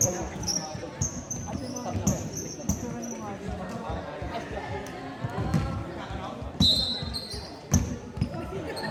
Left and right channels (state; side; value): identical; both; correlation 1.00